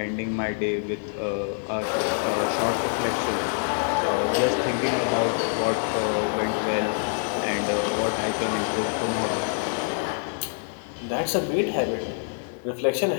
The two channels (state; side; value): silent; right; 61 dB below the other